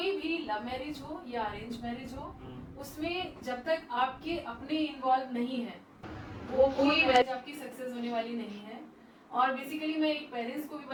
भी लव मैरिज हो या अरेंज मैरिज हो, उसमें जब तक आपके अपने इन्वॉल्व नहीं है वो कोई मैरिज आपकी सक्सेस होने वाली नहीं है। और बेसिकली मैं एक पेरेंट्स को भी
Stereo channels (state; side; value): identical; both; correlation 1.00